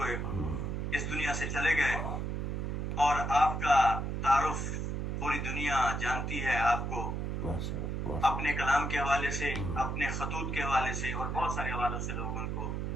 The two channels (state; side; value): noise; right; hum, 2 dB below the sound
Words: اس دنیا سے چلے گئے، اور آپ کا تعارف پوری دنیا جانتی ہے آپ کو ماشاء اللہ. اپنے کلام کے حوالے سے، اپنے خطوط کے حوالے سے، اور بہت سارے حوالوں سے لوگ ان کو